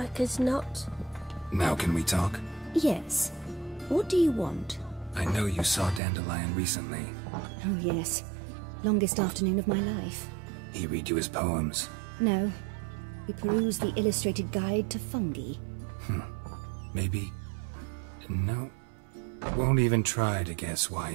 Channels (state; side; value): drops out; left; at 6.0 s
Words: as not. Now can we talk? Yes. What do you want? I know you saw Dandelion recently. Oh, yes. Longest afternoon of my life. He read you his poems. No. We perused the illustrated guide to fungi. Maybe... No. Won't even try to guess why